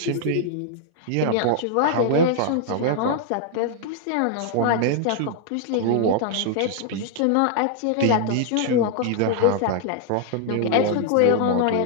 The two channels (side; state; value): both; different; correlation 0.00